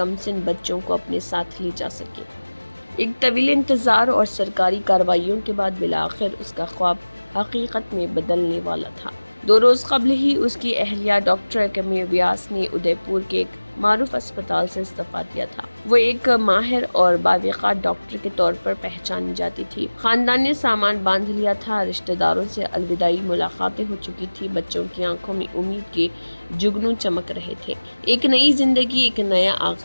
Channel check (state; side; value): inverted; both; correlation -1.00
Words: बच्चों को अपने साथ ले जा सके। एक तवील इंतज़ार और सरकारी कार्रवाइयों के बाद बिलाखिर उसका ख्वाब हकीकत में बदलने वाला था। 2 रोज़ कबल ही उसकी अहलिया डॉक्टर कमी व्यास ने उदयपुर के एक मारूफ अस्पताल से इस्तीफा दिया था। वो एक माहिर और बावक़ार डॉक्टर के तौर पर पहचानी जाती थी। खानदान ने सामान बांध लिया था, रिश्तेदारों से अलविदाई मुलाकातें हो चुकी थी, बच्चों की आंखों में उम्मीद के जुगनू चमक रहे थे। एक नई जिंदगी, एक नया